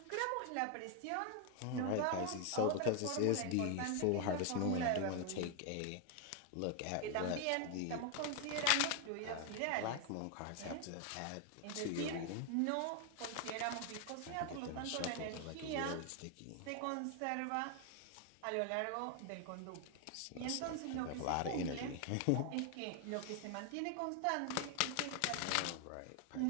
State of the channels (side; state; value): both; different; correlation 0.01